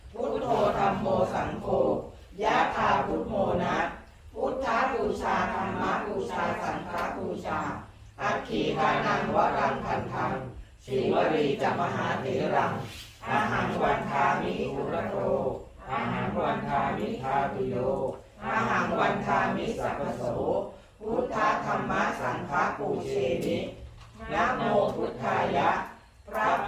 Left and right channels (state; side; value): identical; both; correlation 1.00